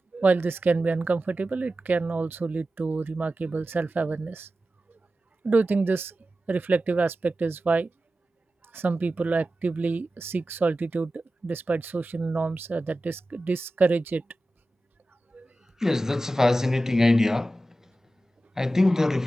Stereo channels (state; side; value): normal; both; correlation 0.94